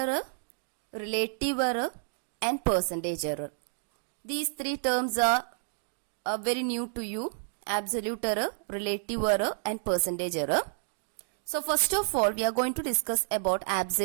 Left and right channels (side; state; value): left; silent; digital silence